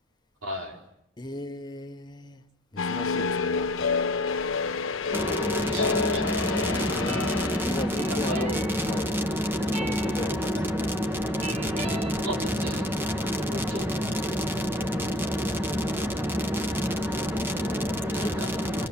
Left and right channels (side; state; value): both; normal; correlation 0.47